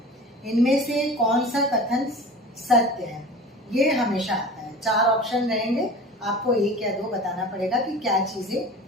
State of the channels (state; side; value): normal; both; correlation 0.38